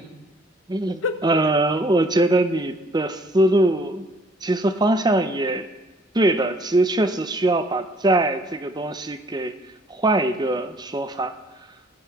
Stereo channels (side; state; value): both; normal; correlation 0.59